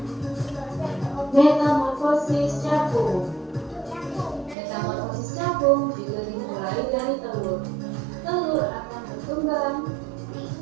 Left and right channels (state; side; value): drops out; left; at 4.5 s